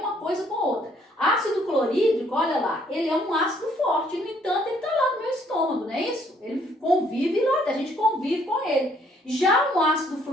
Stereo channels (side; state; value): both; normal; correlation 0.65